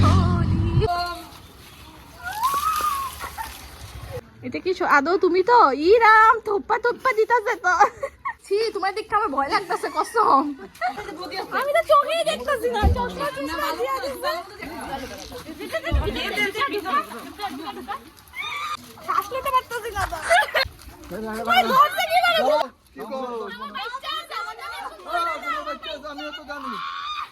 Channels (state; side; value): identical; both; correlation 1.00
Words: Holi. এটা কি আদৌ তুমি তো? ই রাম, থোপ্পা থোপ্পা দিতাছে তো। ছি, তোমার দেখতে আমার ভয় লাগতেছে কসম। আমি তো চোখেই দেখতেছি না। চশমা চশমা দিয়া দিছে। শ্বাস নিতে পারতেছি না তো। ভাই ধরতে কি পারো?